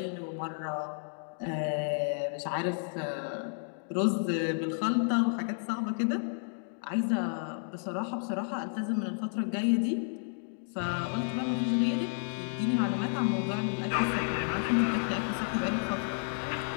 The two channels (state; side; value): silent; right; digital silence